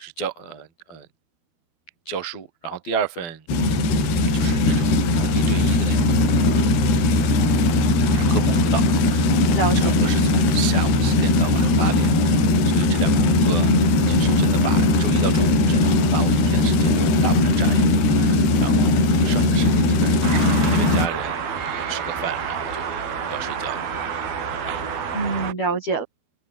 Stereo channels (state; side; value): late; right; 13 ms